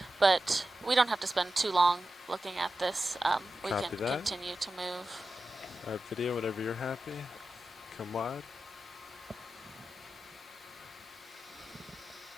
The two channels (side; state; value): both; normal; correlation 0.92